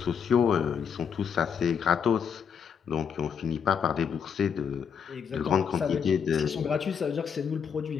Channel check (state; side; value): quieter; right; 7.1 dB